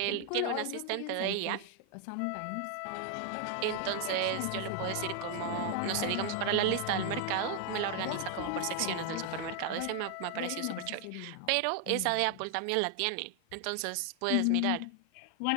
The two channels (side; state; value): both; different; correlation 0.00